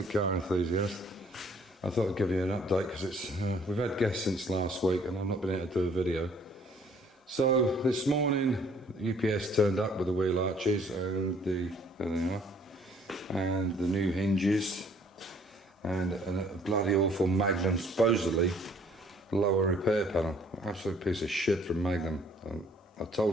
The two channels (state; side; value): normal; both; correlation 0.60